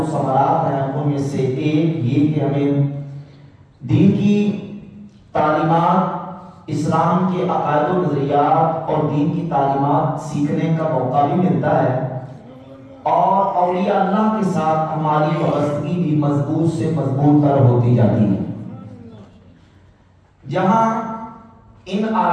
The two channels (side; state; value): both; identical; correlation 1.00